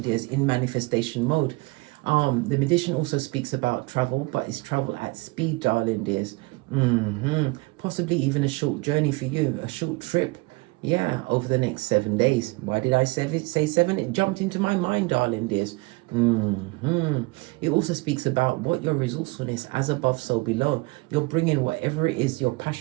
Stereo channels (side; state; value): left; quieter; 25.0 dB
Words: dears, in manifestation mode. The magician also speaks about travel, but it's travel at speed, darling dears. Possibly even a short journey for you, a short trip. Yeah, over the next 7 days. Why did I say 7? It jumped into my mind, darling dears. It also speaks about what your resourcefulness, as above, so below. You're bringing whatever it is, your